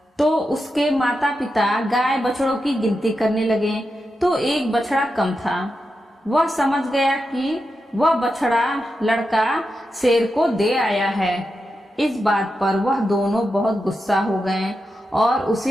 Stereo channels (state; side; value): normal; both; correlation 0.88